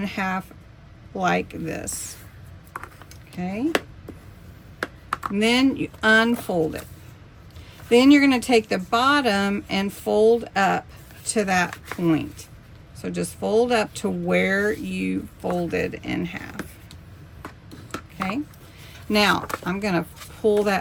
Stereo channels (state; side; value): identical; both; correlation 1.00